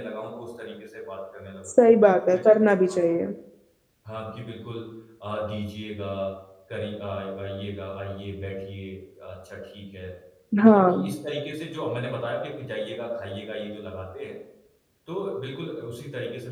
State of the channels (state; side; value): identical; both; correlation 1.00